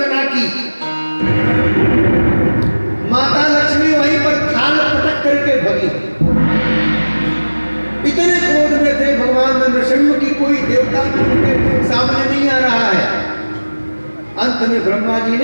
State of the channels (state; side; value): inverted; both; correlation -1.00